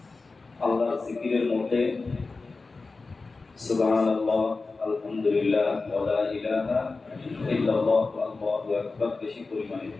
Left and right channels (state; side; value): quieter; right; 3.9 dB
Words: আল্লাহর জিকিরের মধ্যে সুবহানাল্লাহ, আলহামদুলিল্লাহ, ওয়া লা ইলাহা ইল্লাল্লাহ, আল্লাহু আকবার বেশি পরিমাণে